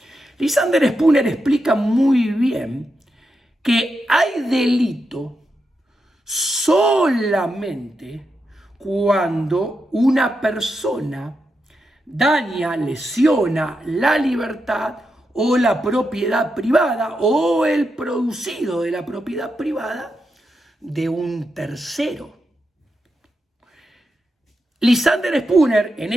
Lysander Spooner explica muy bien que hay delito solamente cuando una persona daña, lesiona la libertad o la propiedad privada o el producido de la propiedad privada de un tercero. Lysander Spooner, en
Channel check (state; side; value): normal; both; correlation 0.86